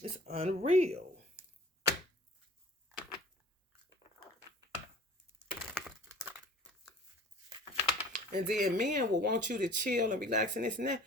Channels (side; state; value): both; normal; correlation 0.47